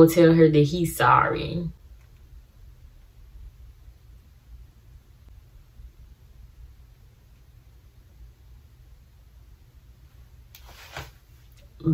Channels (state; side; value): identical; both; correlation 1.00